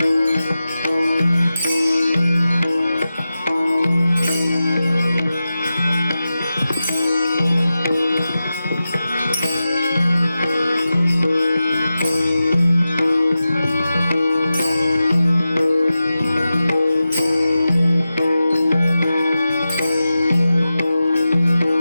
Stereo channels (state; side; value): inverted; both; correlation -0.93